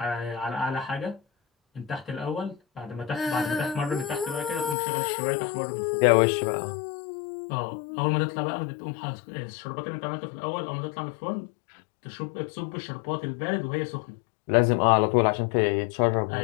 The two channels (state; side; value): drops out; right; at 4.8 s